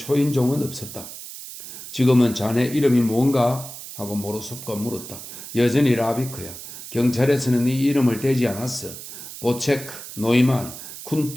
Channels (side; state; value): right; noise; hiss, 12 dB below the sound